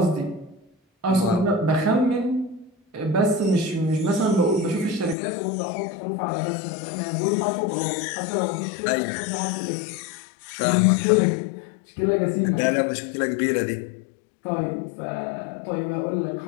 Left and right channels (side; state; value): right; drops out; at 5.2 s